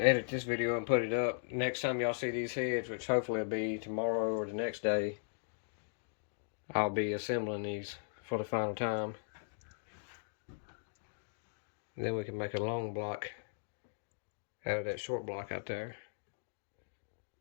edit this video and put it up. Next time y'all see these heads, which hopefully will be tomorrow or the next day, I'll be assembling these for the final time. And then we can make a long block out of that short block out there.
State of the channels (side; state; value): right; silent; digital silence